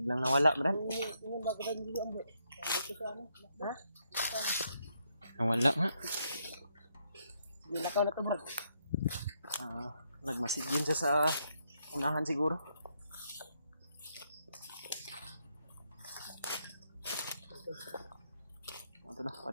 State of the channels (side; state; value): both; inverted; correlation -0.77